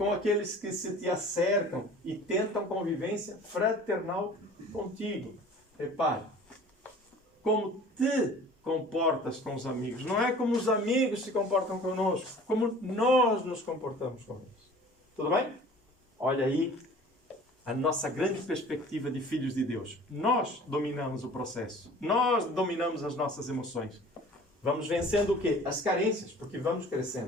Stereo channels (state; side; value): normal; both; correlation 0.46